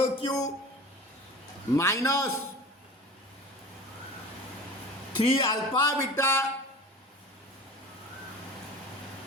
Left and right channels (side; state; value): both; normal; correlation 0.37